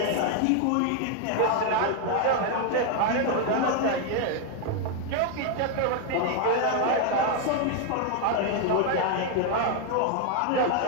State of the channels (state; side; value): different; both; correlation 0.01